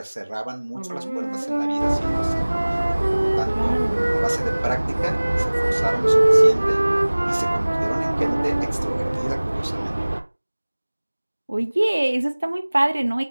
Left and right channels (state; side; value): inverted; both; correlation -1.00